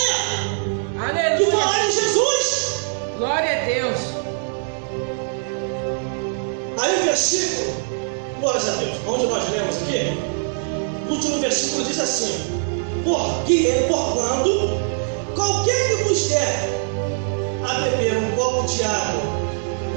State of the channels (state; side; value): silent; left; 60 dB below the other